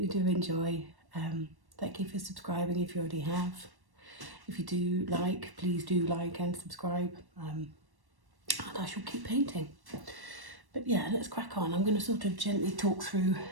do enjoy. Thank you for subscribing if you already have. If you do like, please do like and subscribe, and I shall keep painting. But yeah, let's crack on. I'm going to sort of gently talk through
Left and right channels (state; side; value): late; left; 1.1 ms